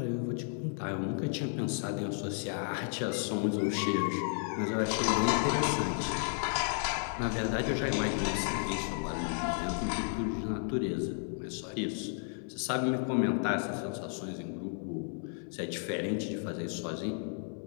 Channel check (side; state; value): right; silent; 56 dB below the other